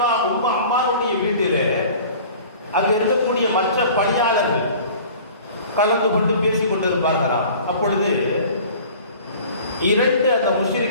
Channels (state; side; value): inverted; both; correlation -0.45